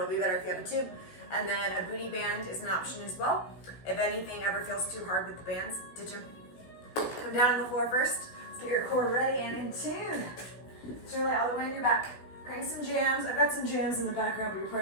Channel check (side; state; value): right; late; 17 ms